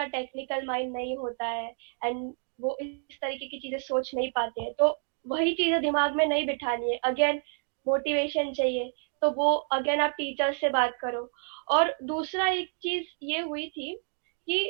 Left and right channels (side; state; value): left; silent; 58 dB below the other